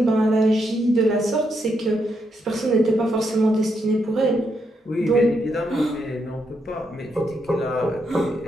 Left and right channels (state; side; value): normal; both; correlation 0.79